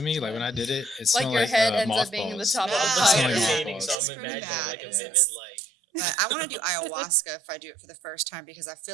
me? Like when I did it, it smelled your like head ends up being the mothballs. top of the I'm pipe. looking at Smelling the Yeah. painting, so It's I'm pretty imagining bad. like a It's- vivid like. But I want to do ayahuasca if I do it for the first time, because I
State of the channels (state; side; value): drops out; left; at 4.0 s